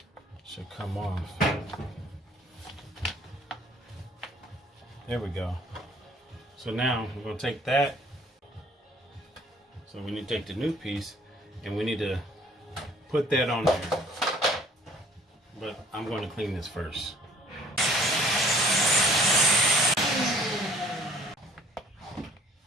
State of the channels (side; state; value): both; normal; correlation 0.55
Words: Should come off. There we go. So now we're gonna take that. So we need to take the new piece and we need to put that on there. But I'm going to clean this first.